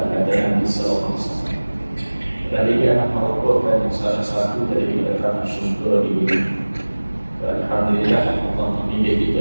pada Nabi Sallallahu Alaihi Wasallam. Dan dia merupakan salah satu dari kami syukur ini. Alhamdulillah, Allah memilih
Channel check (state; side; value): inverted; both; correlation -1.00